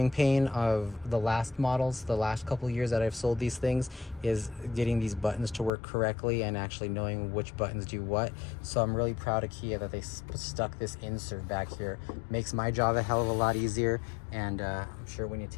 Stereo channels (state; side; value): drops out; right; at 5.7 s